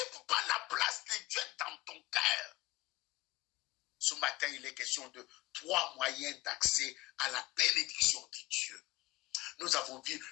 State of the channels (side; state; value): right; quieter; 19.6 dB